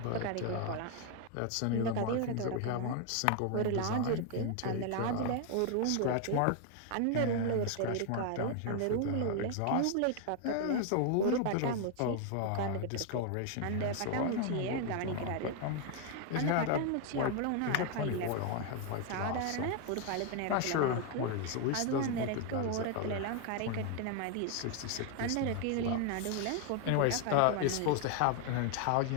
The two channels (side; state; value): both; different; correlation 0.00